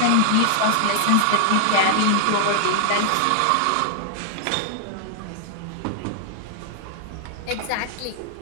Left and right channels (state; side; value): different; both; correlation 0.00